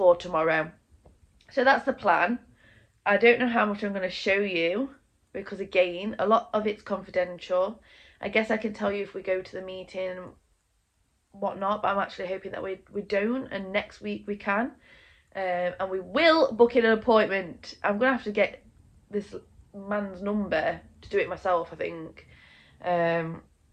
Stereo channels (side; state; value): both; identical; correlation 1.00